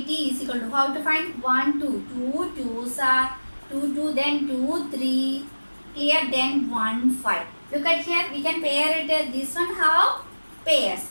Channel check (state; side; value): inverted; both; correlation -1.00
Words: is equal to, how to find? 1 2. 2 2s are 2 2, then 2 3. Clear? Then 1 5. Look at here. We can pair it. This one have pairs.